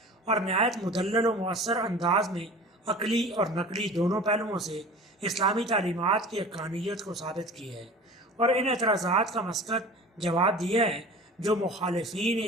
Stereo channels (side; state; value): both; normal; correlation 0.39